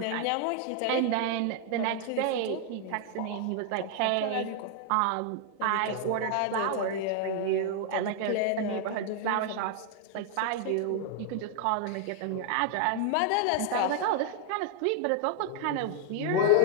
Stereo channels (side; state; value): both; different; correlation 0.00